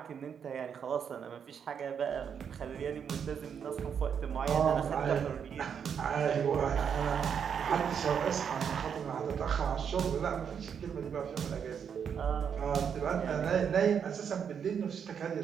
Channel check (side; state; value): left; quieter; 7.5 dB